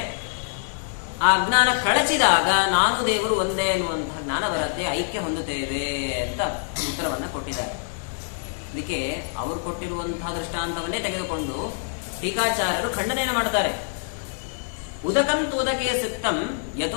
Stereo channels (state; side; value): silent; right; digital silence